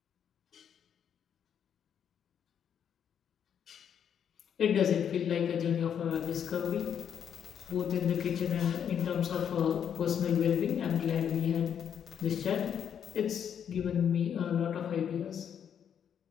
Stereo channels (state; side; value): quieter; right; 8.4 dB